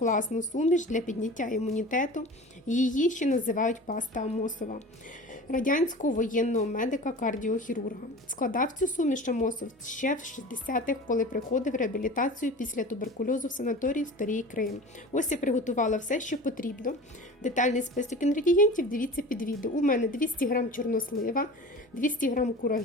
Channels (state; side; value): normal; both; correlation 0.37